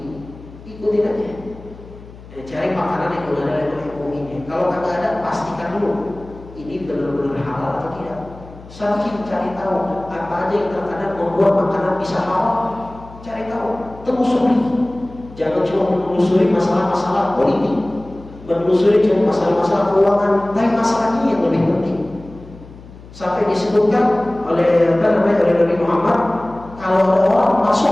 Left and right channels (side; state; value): left; noise; hum, 19 dB below the sound